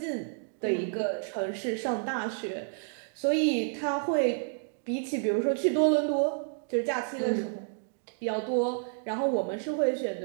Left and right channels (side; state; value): left; silent; digital silence